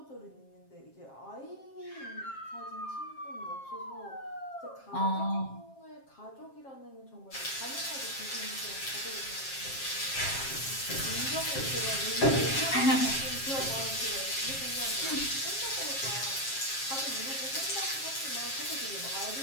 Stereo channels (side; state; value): right; late; 7.4 ms